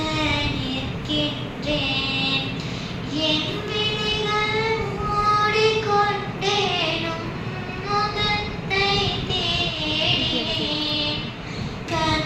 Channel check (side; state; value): both; identical; correlation 1.00